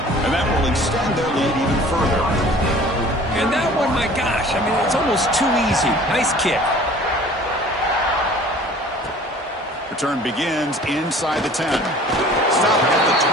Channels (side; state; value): both; normal; correlation 0.48